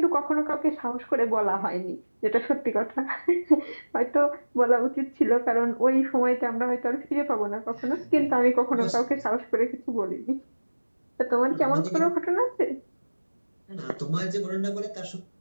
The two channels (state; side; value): inverted; both; correlation -1.00